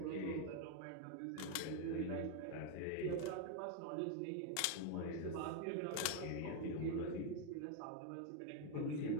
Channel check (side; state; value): both; different; correlation 0.01